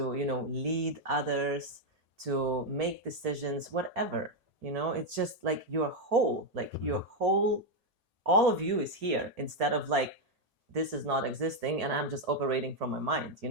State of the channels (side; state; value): left; late; 1.7 ms